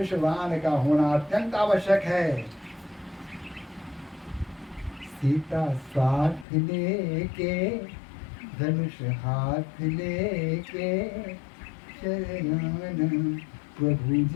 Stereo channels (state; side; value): drops out; right; at 6.5 s